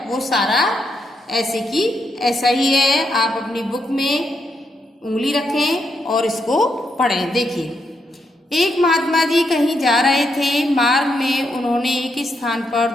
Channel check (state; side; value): normal; both; correlation 0.80